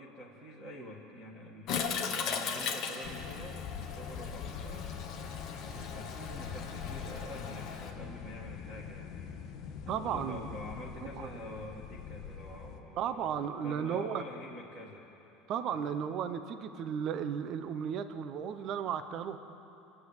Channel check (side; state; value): both; normal; correlation 0.38